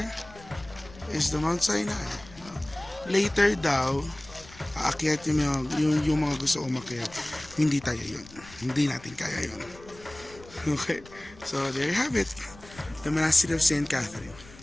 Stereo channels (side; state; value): left; noise; rumble, 20 dB below the sound